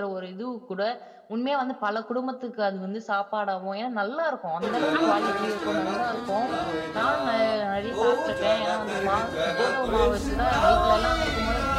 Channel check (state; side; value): identical; both; correlation 1.00